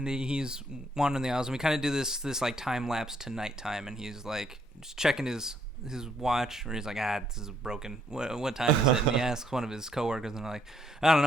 he's wandering the aisles, and we kind of do this like time lapse to nighttime, and he's like just checking his watch, or he's like, this is broken. What time is it? And he asks one of his coworkers, and they're like, I don't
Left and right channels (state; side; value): normal; both; correlation 0.70